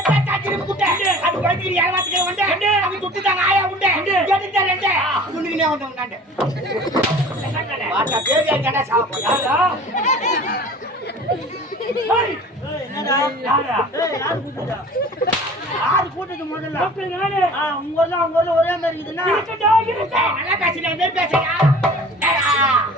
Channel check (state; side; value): normal; both; correlation 0.44